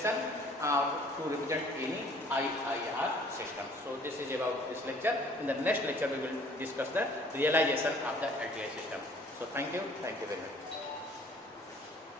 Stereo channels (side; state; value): both; normal; correlation 0.55